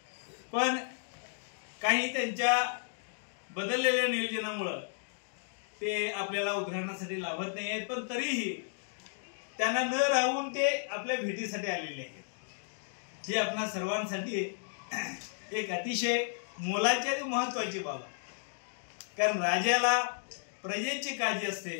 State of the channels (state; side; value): silent; right; digital silence